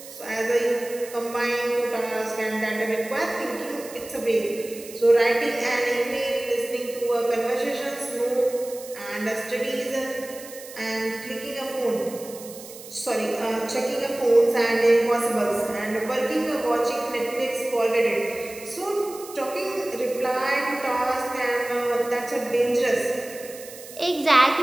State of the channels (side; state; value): right; noise; hiss, 16 dB below the sound